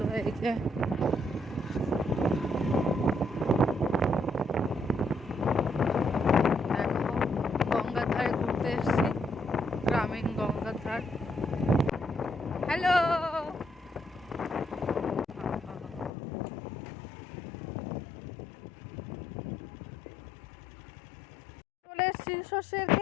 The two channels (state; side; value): drops out; right; at 16.1 s